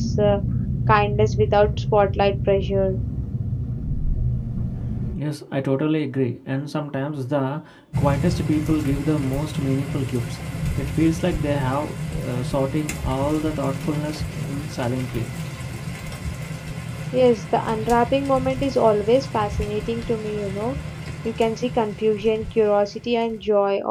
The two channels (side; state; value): both; identical; correlation 1.00